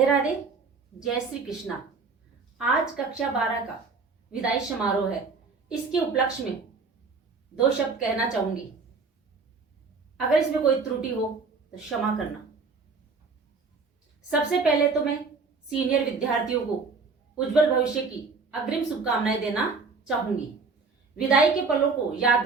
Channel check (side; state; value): left; quieter; 4.5 dB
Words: राधे, जय श्री कृष्णा। आज कक्षा 12 का विदाई समारोह है। इसके उपलक्ष्य में 2 शब्द कहना चाहूंगी। अगर इसमें कोई त्रुटि हो तो क्षमा करना। सबसे पहले तो मैं सीनियर विद्यार्थियों को उज्जवल भविष्य की अग्रिम शुभकामनाएं देना चाहूंगी। विदाई के पलों को